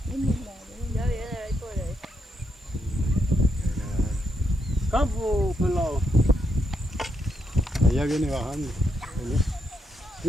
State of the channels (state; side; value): normal; both; correlation 0.79